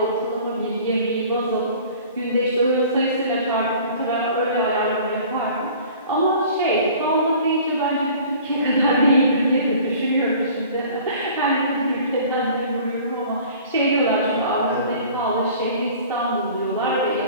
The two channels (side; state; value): both; inverted; correlation -0.47